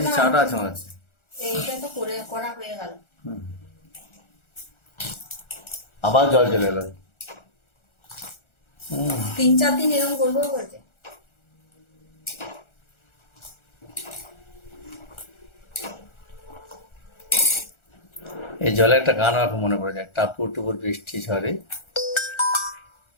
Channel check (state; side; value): late; right; 1.4 ms